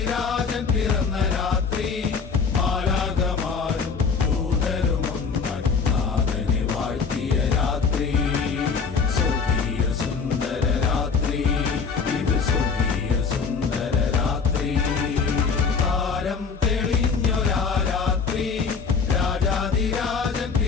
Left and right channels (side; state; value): right; quieter; 5.5 dB